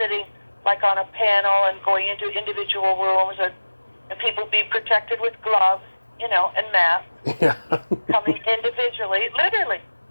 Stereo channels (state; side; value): inverted; both; correlation -1.00